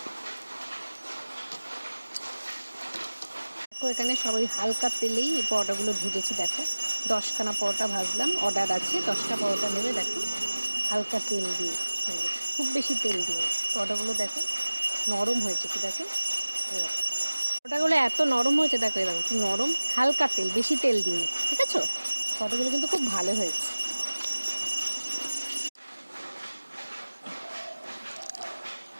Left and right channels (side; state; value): both; inverted; correlation -1.00